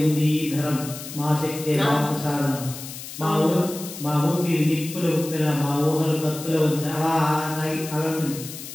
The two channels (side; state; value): left; noise; hiss, 11 dB below the sound